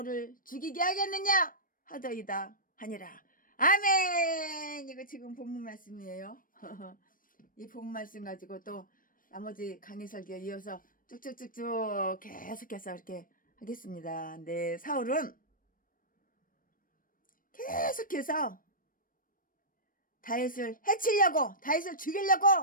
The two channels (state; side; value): late; right; 0.40 ms